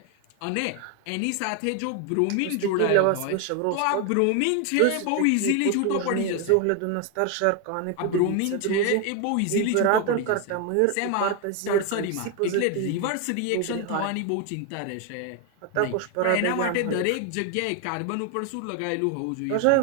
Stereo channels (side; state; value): both; different; correlation 0.01